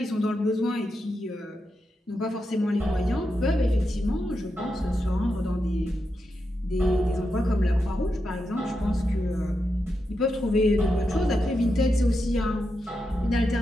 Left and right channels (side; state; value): both; normal; correlation 0.87